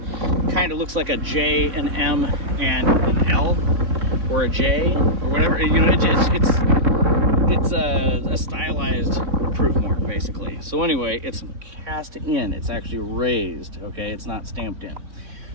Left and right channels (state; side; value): late; left; 3.6 ms